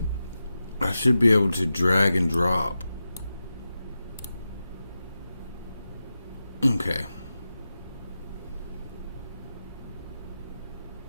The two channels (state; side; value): inverted; both; correlation -0.92